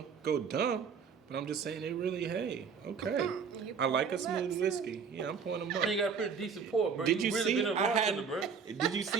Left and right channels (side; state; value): left; quieter; 6.2 dB